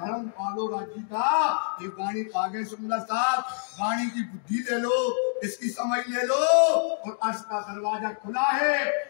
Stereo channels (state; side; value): silent; right; digital silence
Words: पालो राज्य का। ये वाणी आगे सुंदर साहब, वाणी की बुद्धि ले लो, इसकी समझ ले लो, और अर्श का दरवाजा खुला है।